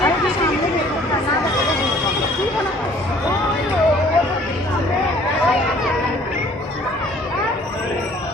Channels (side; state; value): both; normal; correlation 0.55